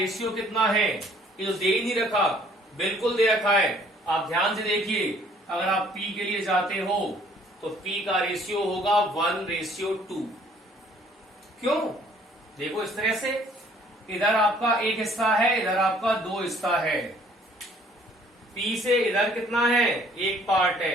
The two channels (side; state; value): both; normal; correlation 0.59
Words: कितना है। ये तो दे ही नहीं रखा, बिल्कुल दे रखा है। आप ध्यान से देखिए, अगर आप P के लिए जाते हो तो P का रेशियो होगा 1:2। क्यों? देखो इस तरह से, इधर आपका एक हिस्सा है, इधर आपका 2 हिस्सा है। P से इधर कितना है, 1 पार्ट